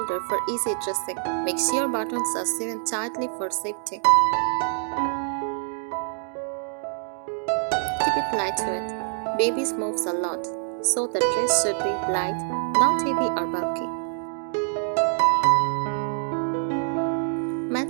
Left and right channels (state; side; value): silent; left; digital silence